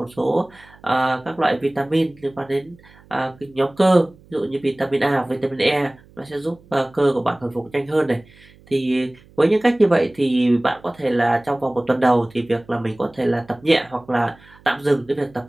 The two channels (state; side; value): noise; right; hum, 26 dB below the sound